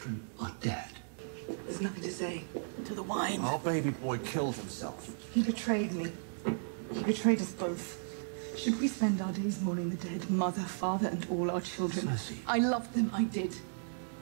are dead. There's nothing to say. To the wine. Our baby boy killed himself. He betrayed me. He betrayed us both. Should we spend our days mourning the dead, mother, father, and all our children? Cersei. I loved them, I did.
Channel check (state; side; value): silent; left; digital silence